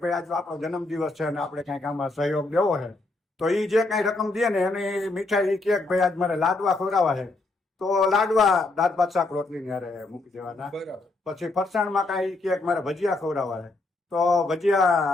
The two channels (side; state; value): right; quieter; 3.1 dB